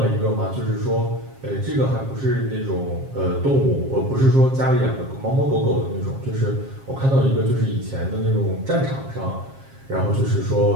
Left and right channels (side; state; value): left; late; 7.4 ms